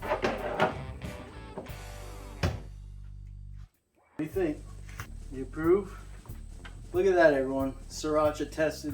What do you think? You approve? Look at that, everyone. Sriracha tested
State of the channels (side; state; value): both; identical; correlation 1.00